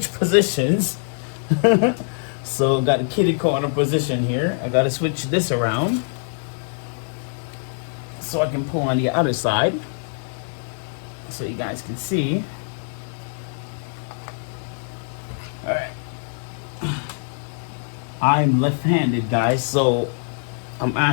positions. So got a kitty corner position here. I got to switch this around so I can pull on the other side so you guys can see. All right. I'm left-handed, guys, so I'm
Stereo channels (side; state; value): right; silent; 63 dB below the other